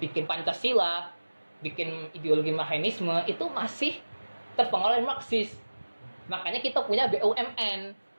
Pancasila, bikin ideologi Marxisme itu masih terpengaruh Marxis. Makanya kita punya BUMN.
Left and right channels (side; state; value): both; inverted; correlation -1.00